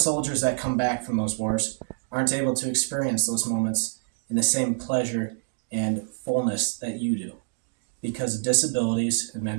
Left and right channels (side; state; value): left; silent; 61 dB below the other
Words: that come back from those wars aren't able to experience those moments in the same pleasure and fullness that you do because of disabilities and